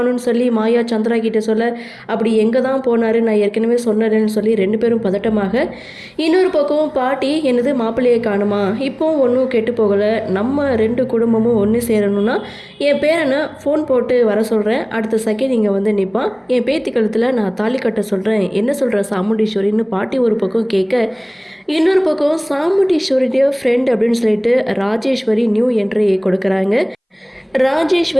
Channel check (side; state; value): both; identical; correlation 1.00